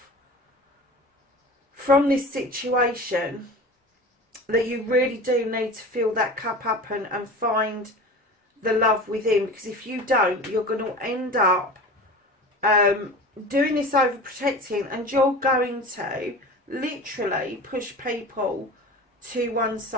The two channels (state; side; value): normal; both; correlation 0.34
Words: from this situation that you really do need to fill that cup up and find the love within, because if you don't, you're going to end up doing this overprotecting, and you're going to literally push people to one